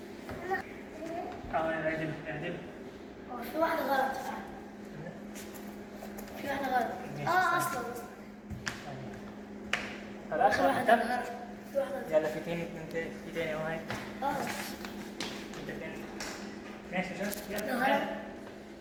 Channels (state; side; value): identical; both; correlation 1.00